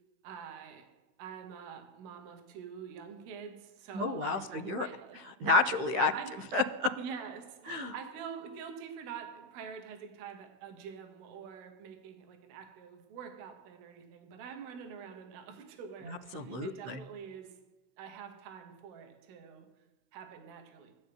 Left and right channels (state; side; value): late; left; 16 ms